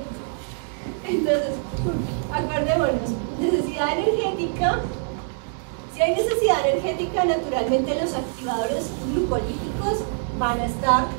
Entonces, acordémonos, necesidad energética. Si hay necesidad energética, naturalmente los activadores glucolíticos van a estar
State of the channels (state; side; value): silent; left; 62 dB below the other